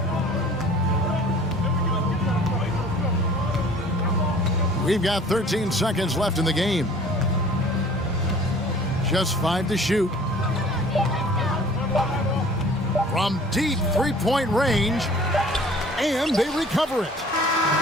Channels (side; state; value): both; normal; correlation 0.49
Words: We've got 13 seconds left in the game. Just 5 to shoot. From deep three-point range, and they recover it.